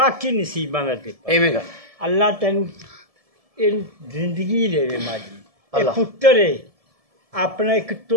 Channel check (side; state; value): left; late; 1.7 ms